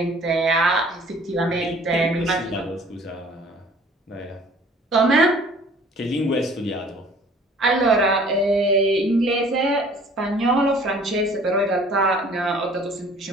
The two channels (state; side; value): normal; both; correlation 0.52